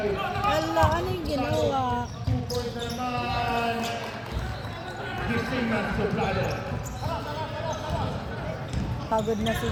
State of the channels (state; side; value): identical; both; correlation 1.00